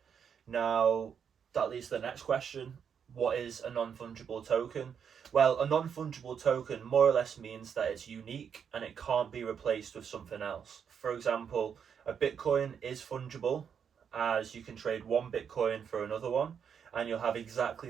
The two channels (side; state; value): left; quieter; 7.4 dB